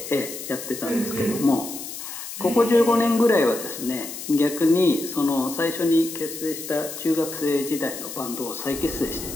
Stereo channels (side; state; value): left; noise; hiss, 9 dB below the sound